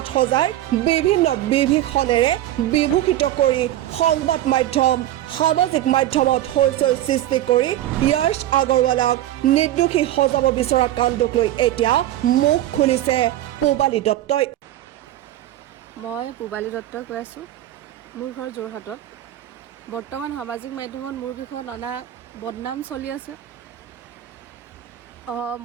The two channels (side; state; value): left; quieter; 13.6 dB